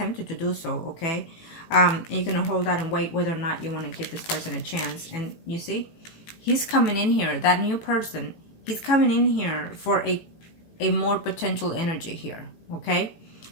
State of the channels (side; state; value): right; late; 18 ms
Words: to do so, okay? You're going to hold out and wait whether or not you want to give this person a chance. And you see, he's coming in here, that new person, he's coming in here for a more potential energy here, okay?